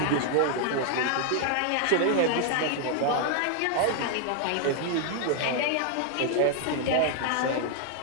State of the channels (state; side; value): different; both; correlation 0.00